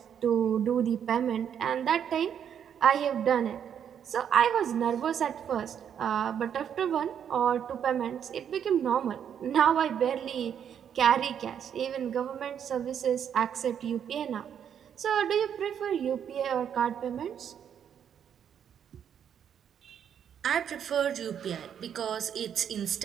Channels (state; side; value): quieter; left; 8.6 dB